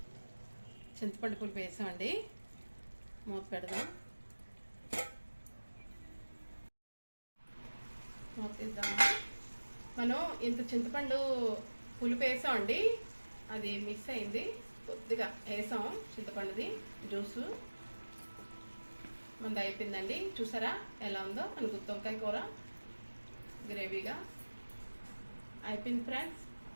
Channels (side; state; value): both; inverted; correlation -1.00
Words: చింతపండు పులుపు వేసామండి, మూత పెడదాం. మూత తీద్దాం. మనం ఇంత చింతపండు పులుపు వేసామండి, అది మిస్ అయింది. కొద్దిగా వేసాం చింతపండుది జ్యూసు. మనది అయిపోయిందండి. చూసారా ఎలా ఉందో మన గుత్తి వంకాయ కూర గ్రేవీగా అయిపోయింది. ఫ్రెండ్స్,